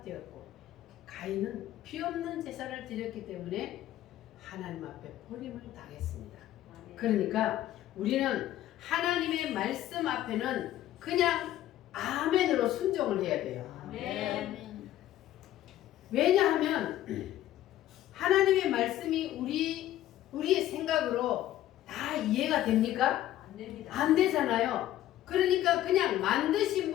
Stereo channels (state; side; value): quieter; right; 13.4 dB